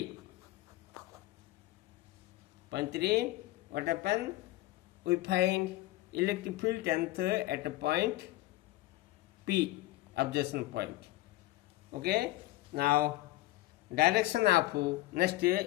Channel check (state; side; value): quieter; right; 17.5 dB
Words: Point 3, what happened? We find electric field length at a point P, observation point. Okay, now direction of next